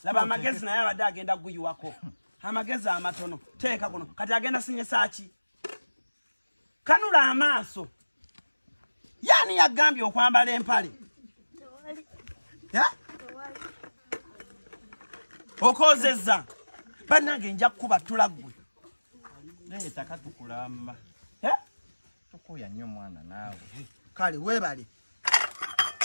Laba amagezi naye abadde agenda guyiwako. Amagezi amatono. Teeka kuno. Kati agenda sinyesa ki? Kanula amaaso. Yani yagambye okwambala empale. Okozezza. Bannange nja kukuba tulaggwe. Leeta katukulamba. Tukuya nnyo mwana naawe. Kale weebale.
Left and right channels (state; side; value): inverted; both; correlation -1.00